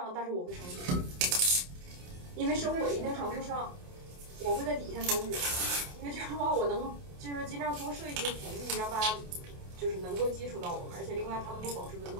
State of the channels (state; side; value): late; left; 28 ms